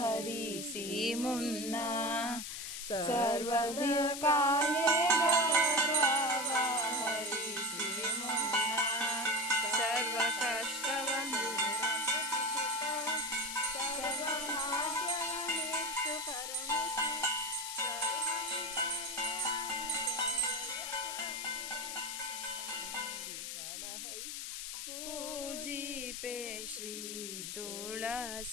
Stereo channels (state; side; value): noise; left; hiss, 6 dB below the sound